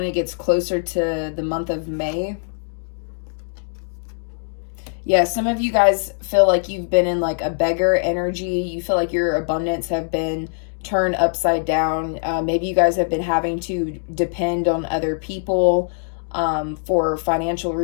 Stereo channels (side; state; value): right; silent; digital silence